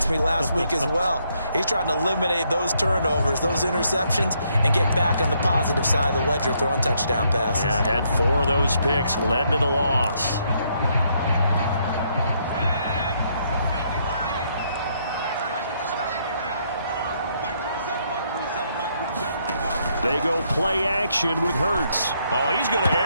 me last week as well. He's trying to eliminate those turnovers, those interceptions, and get back on the positive side of the ledger throwing touchdown passes. Yeah, had 4 of those picks, led to the loss. They go play action with Hurts. Oh, he's going to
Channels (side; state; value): both; inverted; correlation -0.73